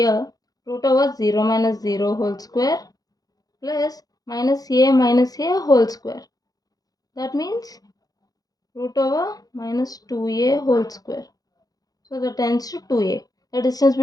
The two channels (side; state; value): right; late; 0.18 ms